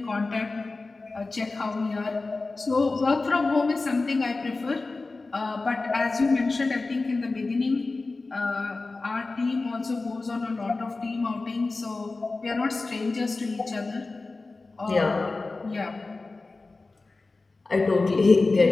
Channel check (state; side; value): quieter; right; 3.6 dB